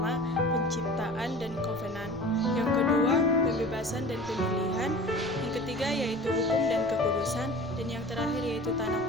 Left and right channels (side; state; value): right; noise; rumble, 19 dB below the sound